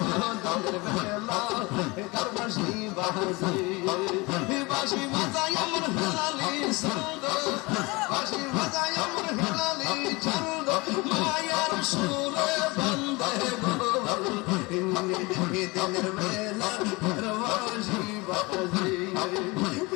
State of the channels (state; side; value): quieter; right; 24.7 dB